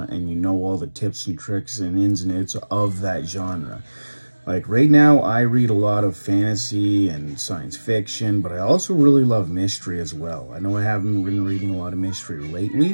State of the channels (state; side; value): inverted; both; correlation -1.00